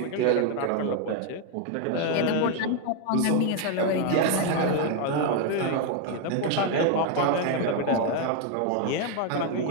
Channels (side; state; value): both; different; correlation 0.01